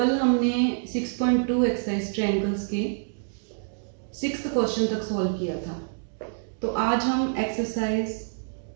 हमने 6.2 एक्सरसाइज ट्रायंगल्स के 6th क्वेश्चन तक सॉल्व किया था। तो आज हम एक्सरसाइज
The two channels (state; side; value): silent; left; digital silence